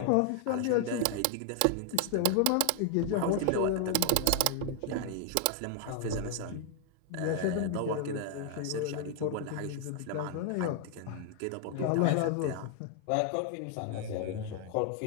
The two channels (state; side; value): different; both; correlation 0.00